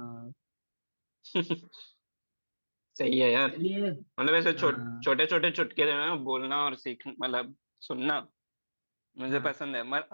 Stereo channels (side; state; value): both; inverted; correlation -1.00